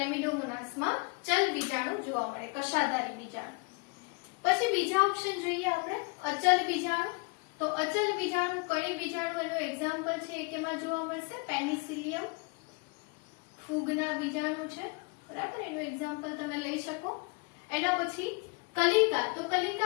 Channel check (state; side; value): quieter; right; 30.6 dB